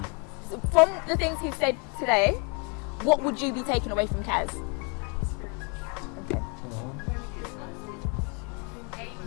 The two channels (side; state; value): right; quieter; 34.8 dB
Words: So from the things he said today, what would you be taking away from Khaz? Okay.